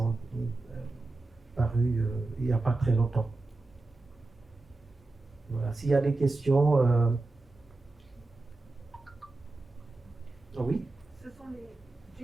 paru il n'y a pas très longtemps. Voilà. S'il y a des questions... Oui. Ce sont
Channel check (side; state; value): left; quieter; 3.2 dB